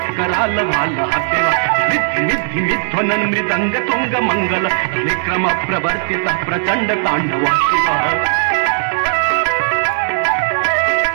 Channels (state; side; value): silent; left; digital silence